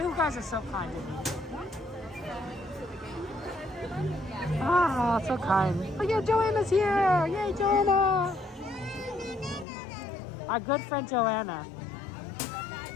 are so kind to me. Oh, so kind. Oh yeah, Joanna's here! Yay, Joanna! Our good friend Joanna.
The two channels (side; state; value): right; drops out; at 9.7 s